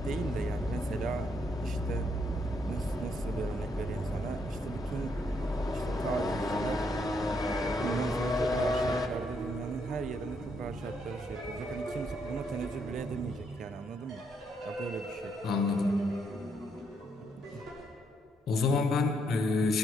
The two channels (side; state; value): both; normal; correlation 0.75